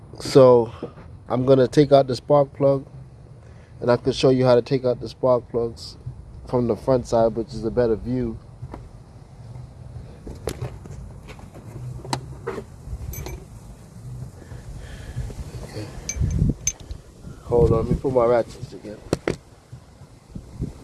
So I'm gonna take out the spark plug, and I can show you how to take out the spark plugs from the front side, which is a better view. Okay. Hold on, let me put my ratchets together.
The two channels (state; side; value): identical; both; correlation 1.00